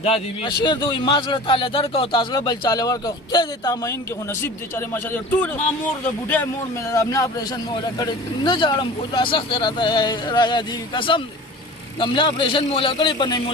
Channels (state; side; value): normal; both; correlation 0.39